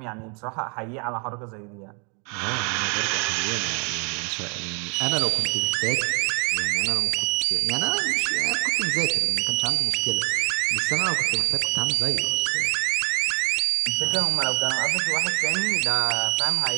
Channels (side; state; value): left; quieter; 36.9 dB